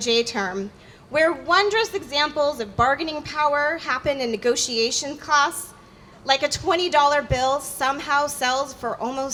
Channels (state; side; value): identical; both; correlation 1.00